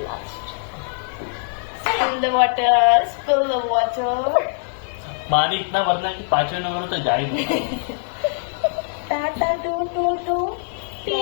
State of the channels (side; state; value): right; silent; digital silence